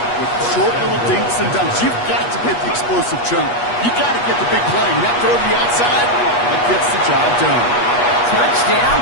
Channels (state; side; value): late; right; 8.3 ms